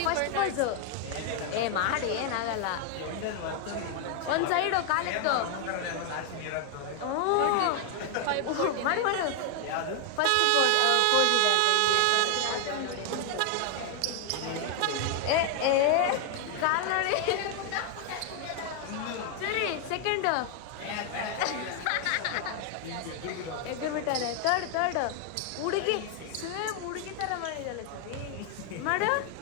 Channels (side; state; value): both; different; correlation 0.00